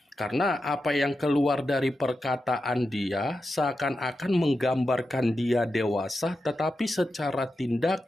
Karena apa yang keluar dari perkataan dia seakan-akan menggambarkan dia dewasa, tetapi secara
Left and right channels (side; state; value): both; normal; correlation 0.89